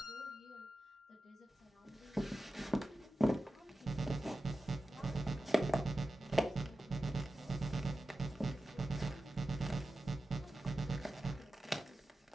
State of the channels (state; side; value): normal; both; correlation 0.93